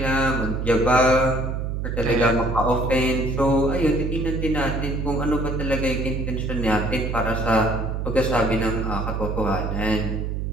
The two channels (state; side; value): noise; right; hum, 2 dB below the sound